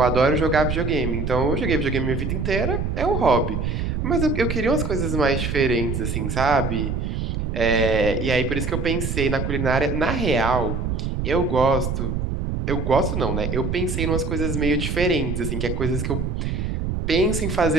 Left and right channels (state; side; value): noise; right; rumble, 2 dB below the sound